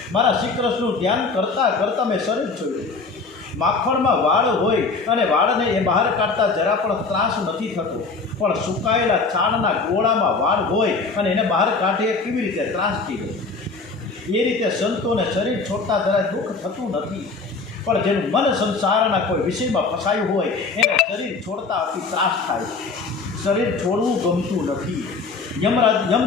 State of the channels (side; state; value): right; quieter; 4.2 dB